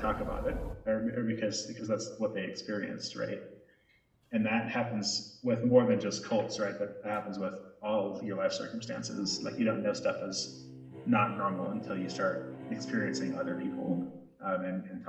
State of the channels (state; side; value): identical; both; correlation 1.00